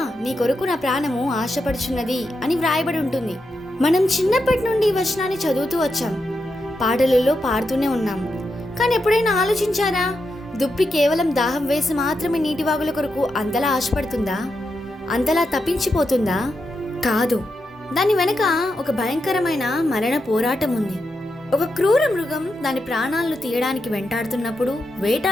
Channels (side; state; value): both; normal; correlation 0.86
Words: నీ కొరకు నా ప్రాణము ఆశపడుచున్నది అని వ్రాయబడి ఉంటుంది. మనం చిన్నప్పటి నుండి ఈ వచనాన్ని చదువుతూ వచ్చాం, పాటలలో పాడుతూనే ఉన్నాం. కానీ ఎప్పుడైనా ఆలోచించారా, దుప్పి కేవలం దాహం వేసి మాత్రమే నీటి వాగుల కొరకు అంతలా ఆశపడుతుందా? అంతలా తప్పించిపోతుందా? కాదు. దాని వెనక ఒక భయంకరమైన మరణ పోరాటం ఉంది. ఒక క్రూర మృగం దాని ప్రాణాలను తీయడానికి